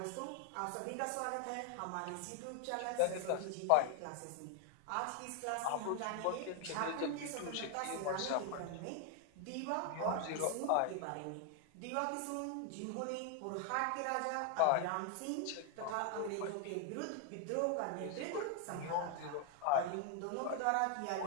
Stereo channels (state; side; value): different; both; correlation 0.00